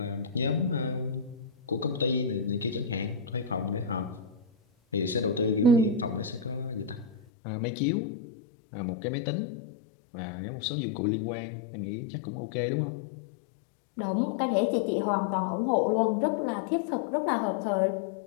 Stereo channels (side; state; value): right; drops out; at 7.2 s